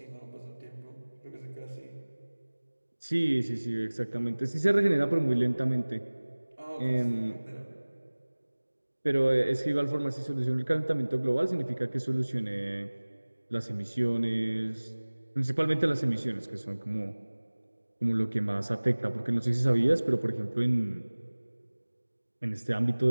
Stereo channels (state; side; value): inverted; both; correlation -1.00